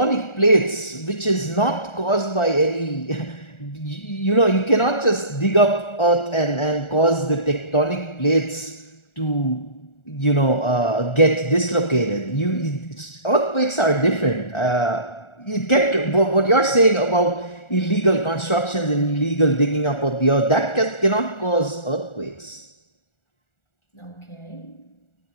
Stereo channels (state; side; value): late; right; 1.4 ms